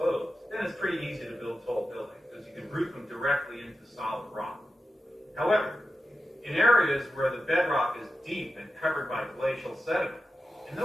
then it's pretty easy to build tall buildings, because you can root them directly into solid rock. However, in areas where the bedrock is deep and covered by glacial sediment, in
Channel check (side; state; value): both; normal; correlation 0.91